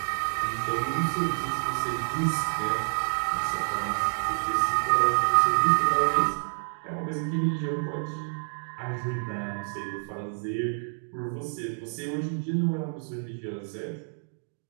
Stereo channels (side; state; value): left; silent; 59 dB below the other